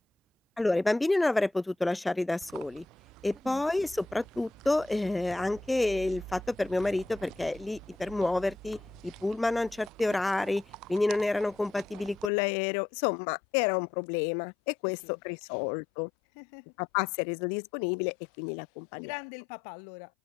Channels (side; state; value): right; drops out; at 12.3 s